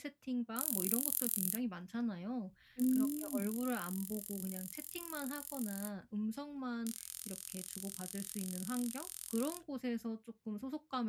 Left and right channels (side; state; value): both; identical; correlation 1.00